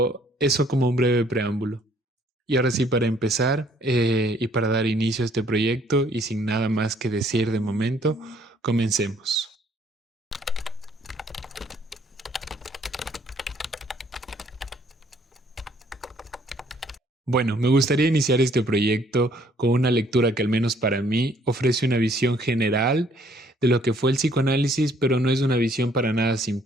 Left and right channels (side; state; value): both; normal; correlation 0.63